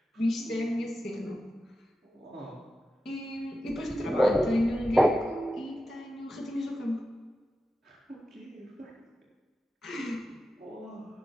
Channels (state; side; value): normal; both; correlation 0.91